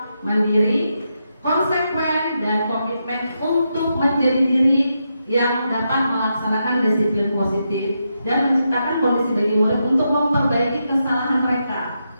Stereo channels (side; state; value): both; inverted; correlation -0.84